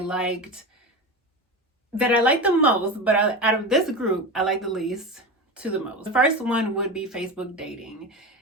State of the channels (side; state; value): both; normal; correlation 0.24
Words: the most, but out of this group, I like the least to the most. The first one would be Facebook dating.